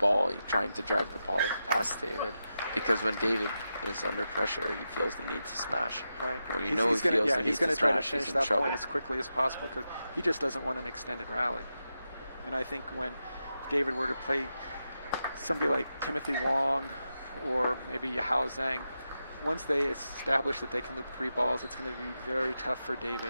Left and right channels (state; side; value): inverted; both; correlation -0.89